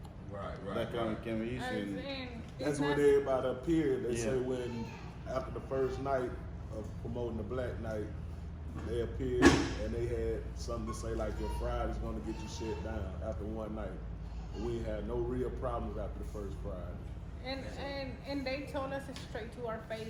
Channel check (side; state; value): both; identical; correlation 1.00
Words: Right. That kind of became an issue. And That's when everybody appeared. They Yeah. say when after the first night of promoting the Black Night, they appeared and they had something to say like your Friday's gonna get you shut down after one night. We had no real problems after the first Friday. And they told us straight to our